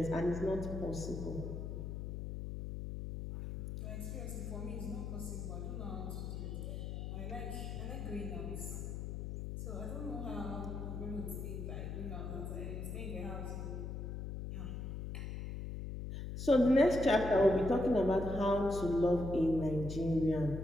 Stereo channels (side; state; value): left; noise; hum, 5 dB below the sound